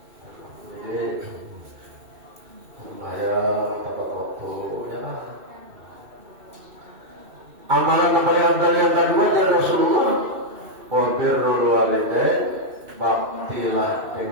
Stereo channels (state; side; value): late; left; 2.6 ms